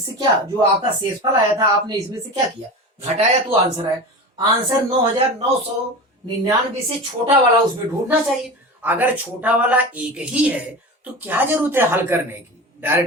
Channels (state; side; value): normal; both; correlation 0.28